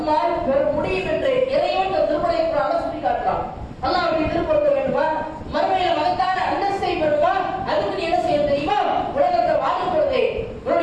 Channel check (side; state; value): both; identical; correlation 1.00